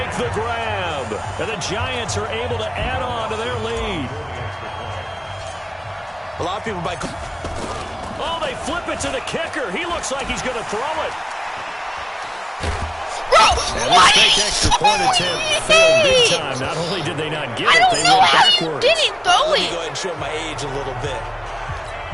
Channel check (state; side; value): identical; both; correlation 1.00